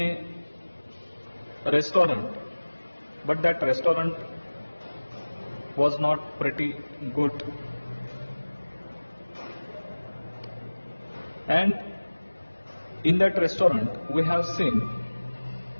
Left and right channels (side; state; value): both; inverted; correlation -1.00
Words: restaurant, but that restaurant was not pretty good, and in that restaurant we have seen